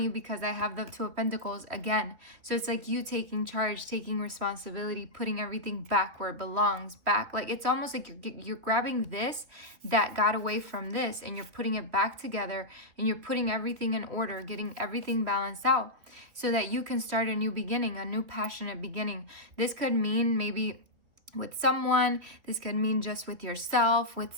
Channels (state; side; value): late; left; 3.4 ms